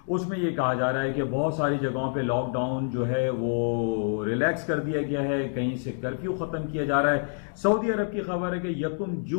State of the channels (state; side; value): silent; right; digital silence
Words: उसमें ये कहा जा रहा है कि बहुत सारी जगहों पे लॉकडाउन जो है वो रिलैक्स कर दिया गया है, कहीं से कर्फ्यू ख़त्म किया जा रहा है। सऊदी अरब की खबर है कि 1